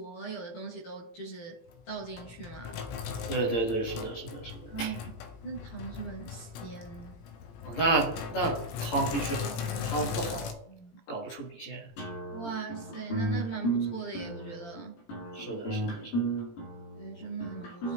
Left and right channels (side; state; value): right; late; 18 ms